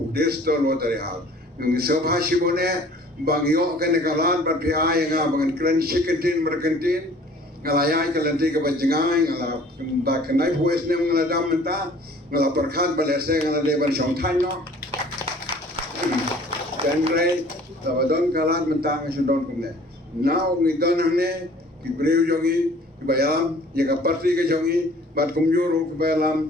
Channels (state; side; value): normal; both; correlation 0.51